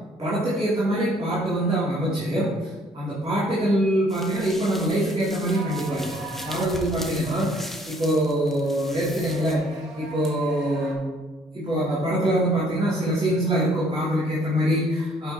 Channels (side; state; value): both; normal; correlation 0.61